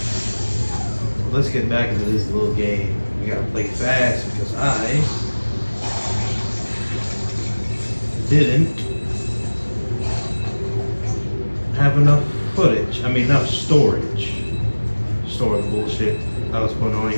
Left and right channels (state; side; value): inverted; both; correlation -1.00